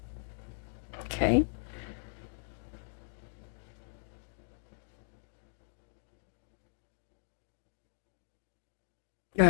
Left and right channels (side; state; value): right; silent; digital silence